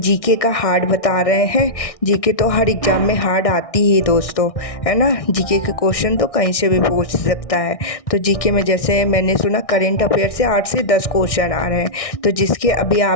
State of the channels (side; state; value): right; late; 1.6 ms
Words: का हार्ड बता रहे हैं। जीके तो हर एग्ज़ाम में हार्ड आती ही दोस्तों, है ना। जीके के क्वेश्चन तो कहीं से भी पूछ सकता है। तो जीके में जैसे मैंने सुना करेंट अफेयर से 8 से 10 क्वेश्चन आ रहे हैं। तो जिसके अभी